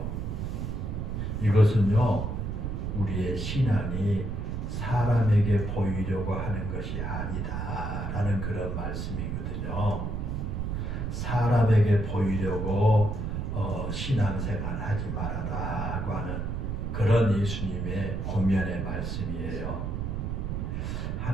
이것은요, 우리의 신앙이 사람에게 보이려고 하는 것이 아니다 라는 그런 말씀이거든요. 사람에게 보이려고 신앙생활 하지 말아라고 하는 그런 예수님의 권면의 말씀이에요.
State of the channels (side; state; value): right; noise; rumble, 2 dB below the sound